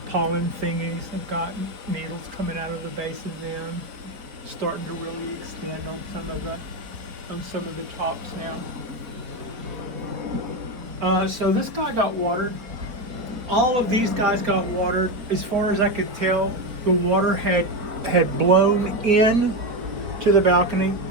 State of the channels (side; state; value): left; late; 4.6 ms